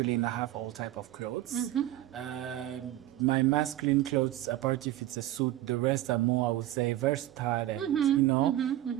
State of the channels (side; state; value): left; quieter; 14.2 dB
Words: I have all type of clothes. My masculine clothes, apart if it's a suit, the rest are more, I would say, versatile and, you know.